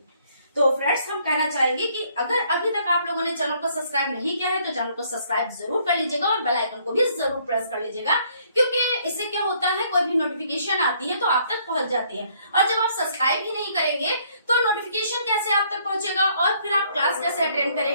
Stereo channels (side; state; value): both; inverted; correlation -0.65